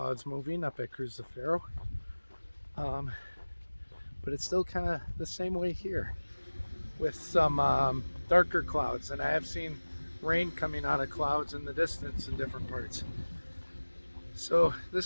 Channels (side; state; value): both; inverted; correlation -1.00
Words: moving up at Cruz de Ferro. But it's still kind of the same way here with some darker clouds. And I have seen rain coming out of clouds in the distance in different parts. So